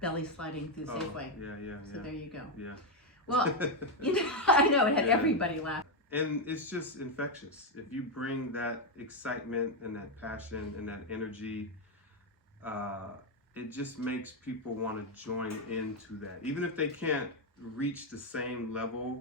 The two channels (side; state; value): both; normal; correlation 0.04